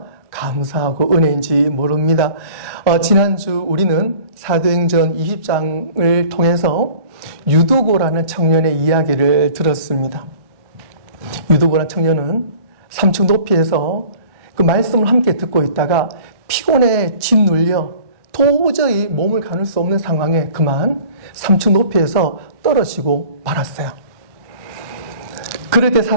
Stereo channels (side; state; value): left; late; 1.1 ms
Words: 감사하고 은혜인지 모릅니다. 지난주 우리는 사도행전 20장을 통해서 유두고라는 청년의 이야기를 들었습니다. 유두고라는 청년은 3층 높이에서 그 말씀을 함께 듣고 있다가 피곤에 짓눌려 도저히 몸을 가눌 수 없는 상황에 그만 3층 높이에서 떨어지고 말았어요. 그럴 때